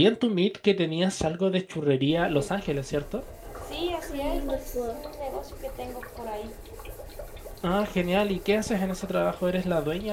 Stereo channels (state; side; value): identical; both; correlation 1.00